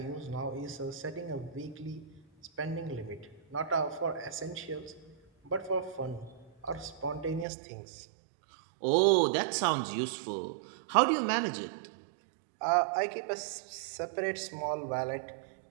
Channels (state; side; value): drops out; left; at 7.5 s